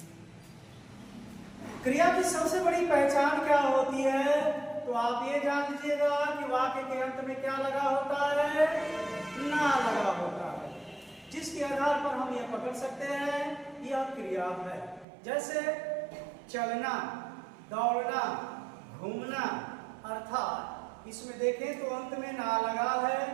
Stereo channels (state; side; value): drops out; left; at 15.1 s